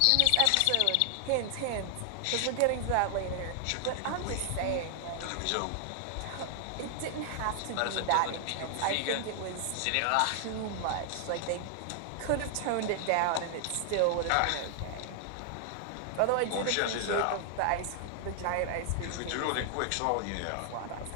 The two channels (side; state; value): both; different; correlation 0.00